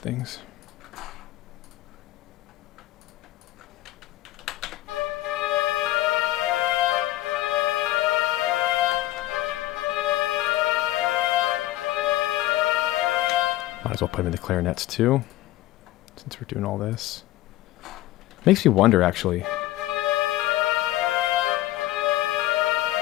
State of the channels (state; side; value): quieter; right; 16.0 dB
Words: Might as well put them in the clarinets too, since we're doing all this. Makes me wonder, actually.